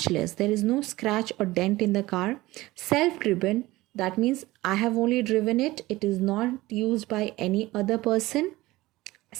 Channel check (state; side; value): quieter; left; 18.7 dB